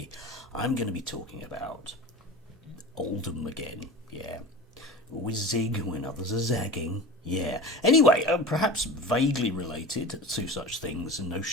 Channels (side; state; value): both; normal; correlation 0.33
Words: I'm going to be talking about Oldham again. Yeah. Always zig when others are zagging. Yeah. Anyway, perhaps vaguely related to such things and